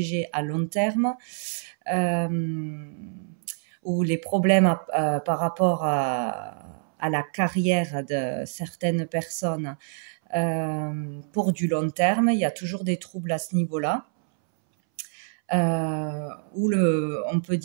à long terme, ou les problèmes par rapport à la carrière de certaines personnes pour du long terme. Il y a toujours des troubles à ce niveau-là. On peut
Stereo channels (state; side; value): silent; left; 61 dB below the other